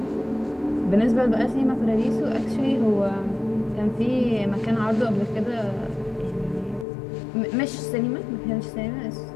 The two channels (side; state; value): right; drops out; at 6.9 s